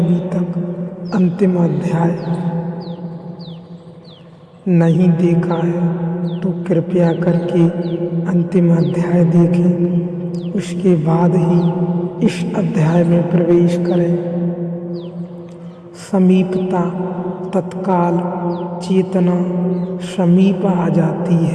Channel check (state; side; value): identical; both; correlation 1.00